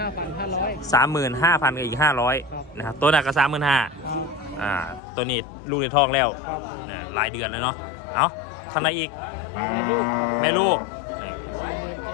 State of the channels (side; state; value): right; drops out; at 5.0 s